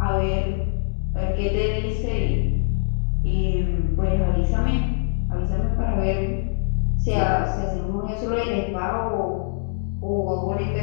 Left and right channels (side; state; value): right; silent; digital silence